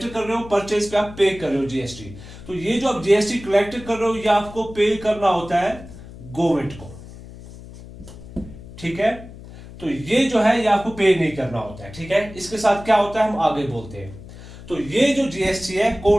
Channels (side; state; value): left; noise; hum, 16 dB below the sound